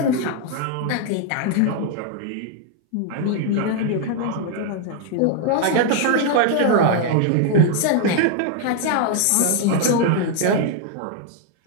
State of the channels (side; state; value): both; different; correlation 0.00